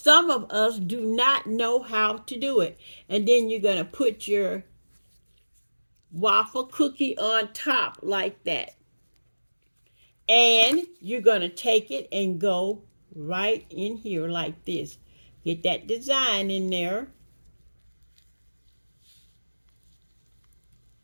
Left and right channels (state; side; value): inverted; both; correlation -1.00